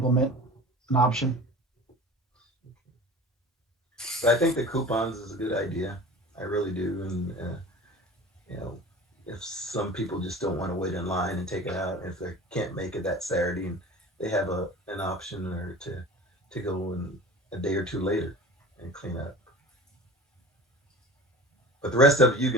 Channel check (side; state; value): both; normal; correlation 0.38